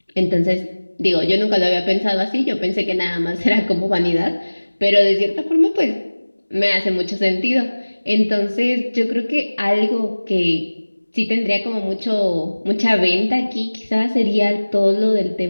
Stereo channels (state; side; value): inverted; both; correlation -1.00